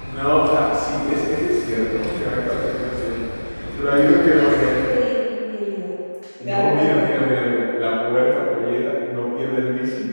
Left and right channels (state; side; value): inverted; both; correlation -1.00